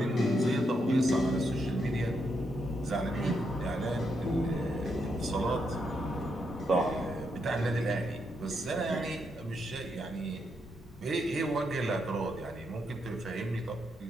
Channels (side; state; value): both; normal; correlation 0.80